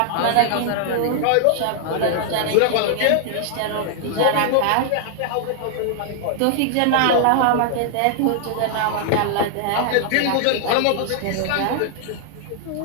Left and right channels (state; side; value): different; both; correlation 0.00